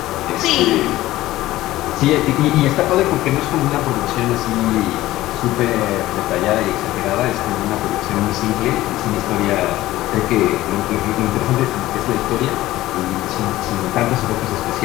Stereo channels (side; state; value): right; quieter; 16.2 dB